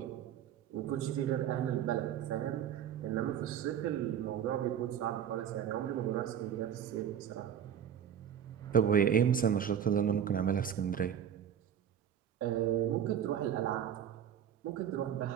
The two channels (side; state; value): left; quieter; 9.2 dB